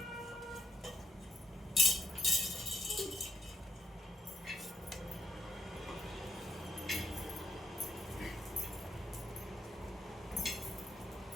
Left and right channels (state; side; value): normal; both; correlation 0.77